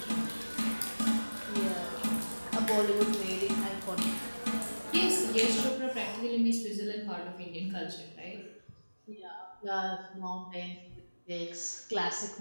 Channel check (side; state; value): both; inverted; correlation -1.00